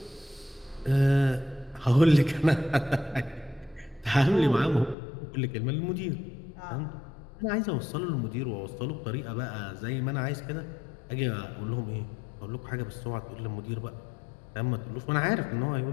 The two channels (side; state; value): right; drops out; at 5.0 s